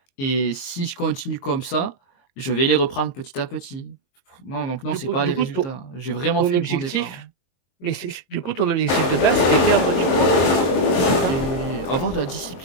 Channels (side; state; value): right; late; 23 ms